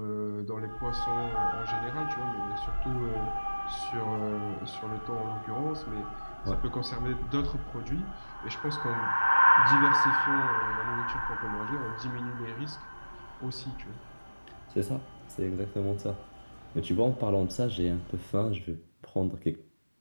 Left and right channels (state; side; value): inverted; both; correlation -1.00